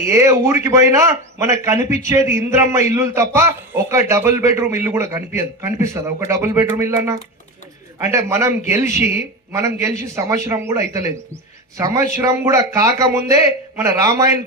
ఏ ఊరికి పోయినా మనకు కనిపించేది ఇంద్రమ్మ ఇల్లులు తప్ప ఒక డబుల్ బెడ్రూమ్ ఇల్లు కూడా కనిపిస్తుందా ఒక డబుల్ బెడ్రూమ్ ఇల్లు అన్న? అంటే మనం గెలిచి సంవత్సరం కూడా అయితలేదు. సంవత్సరం కూడా కాకముందే మన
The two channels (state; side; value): normal; both; correlation 0.23